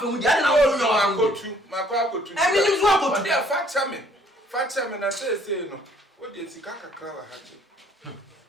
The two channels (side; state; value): both; normal; correlation 0.62